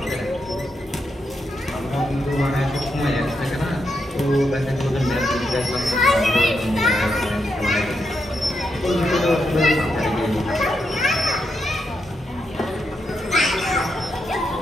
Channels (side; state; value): both; normal; correlation 0.83